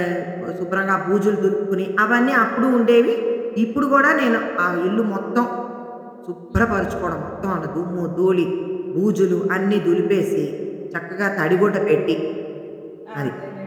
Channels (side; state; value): both; identical; correlation 1.00